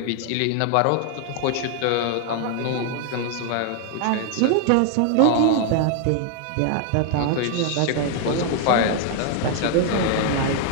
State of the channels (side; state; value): both; different; correlation 0.00